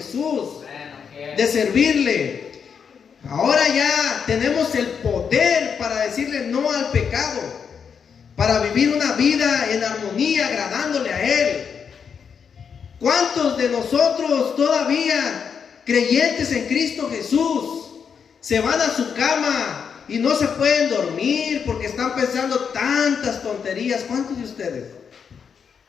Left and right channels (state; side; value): quieter; right; 6.7 dB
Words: de servirle. Ahora ya tenemos el poder para decirle no al pecado, para vivir una vida en armonía, agradándole a Él. ¿Cuántos de nosotros todavía creyentes en Cristo Jesús se van a su cama y no se pueden dormir porque están pensando tantas tonterías? ¿Cuántos de ustedes